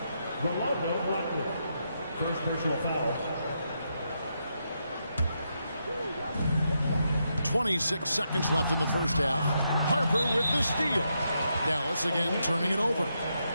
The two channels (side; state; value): both; inverted; correlation -0.82